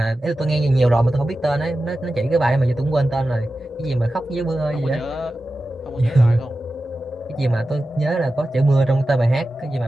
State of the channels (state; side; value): normal; both; correlation 0.93